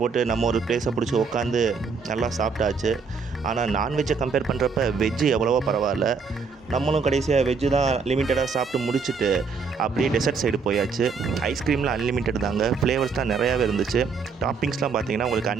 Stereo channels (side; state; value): left; quieter; 5.1 dB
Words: போட்டு நம்ம ஒரு ப்ளேஸை பிடிச்சி உட்காந்து நல்லா சாப்பிட்டாச்சு. ஆனால் நான்வெஜ்ஜை கம்பேர் பண்ணுறப்ப வெஜ்ஜு எவ்வளவோ பரவாயில்ல. நம்மளும் கடைசியாக வெஜ்ஜு தான் லிமிட்டடாக சாப்பிட்டு முடிச்சுட்டு அப்படியே டெசர்ட் சைடு போயாச்சு. ஐஸ்கிரீமில் அன்லிமிட்டட் தாங்க. ஃப்ளேவர்ஸ் தான் நிறையாவே இருந்துச்சு. டாப்பிங்ஸ்லாம் பார்த்தீங்கன்னா உங்களுக்கு